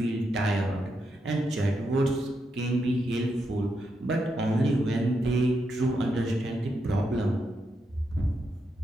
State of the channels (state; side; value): normal; both; correlation 0.83